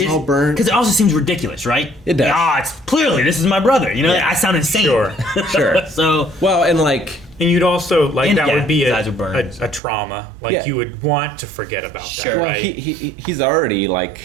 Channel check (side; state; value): left; drops out; at 9.8 s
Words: all burnt. Because it also seems ridiculous, right? It does. It's clearly this is my brother. You know, I sound insane. Sure. So well, and like, and you'd also like that would be his eyes would burn. a trauma. Like you would want to forget about that, well, right? he's already like